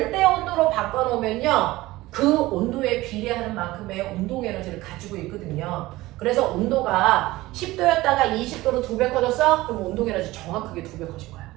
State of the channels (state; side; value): quieter; left; 18.5 dB